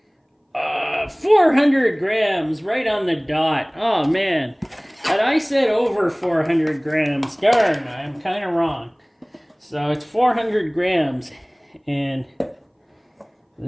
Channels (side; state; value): both; identical; correlation 1.00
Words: 400 grams right on the dot. Oh man, had I said over 400 grams, darn, I'm kind of wrong. So it's 400 grams, and